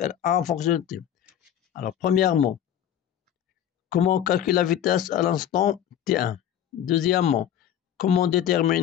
en fonction de T. Alors, premièrement, comment calculer la vitesse à l'instant T1? Deuxièmement, comment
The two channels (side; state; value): right; quieter; 10.2 dB